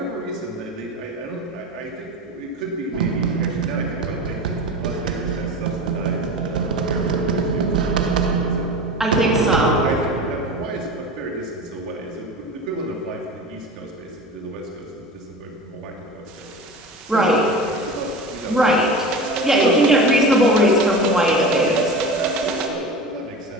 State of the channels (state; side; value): normal; both; correlation 0.31